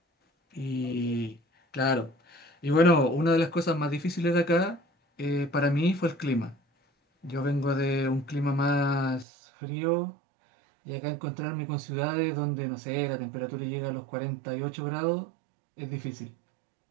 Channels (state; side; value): drops out; left; at 9.2 s